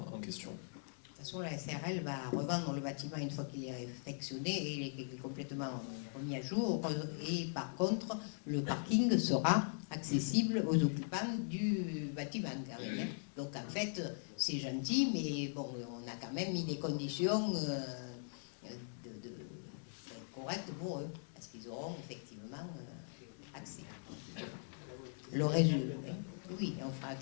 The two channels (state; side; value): silent; right; digital silence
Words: en question. De toute façon, la SARL va revendre le bâtiment une fois qu'il est réfectionné et il est complètement remis à jour. Et par contre, le parking sera accessible aux occupants du bâtiment. Donc en fait, c'est gentil, mais bon, on a quand même mis des conditions correctes pour eux, parce qu'ils auront effectivement accès. Le résultat, oui, on